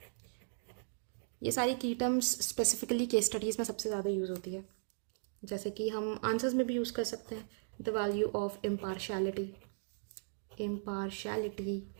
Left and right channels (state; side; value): silent; left; digital silence